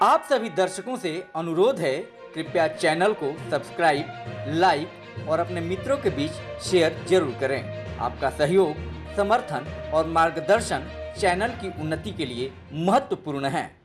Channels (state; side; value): identical; both; correlation 1.00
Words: आप सभी दर्शकों से अनुरोध है, कृपया चैनल को सब्सक्राइब, लाइक और अपने मित्रों के बीच शेयर जरूर करें। आपका सहयोग, समर्थन और मार्गदर्शन चैनल की उन्नति के लिए महत्वपूर्ण है।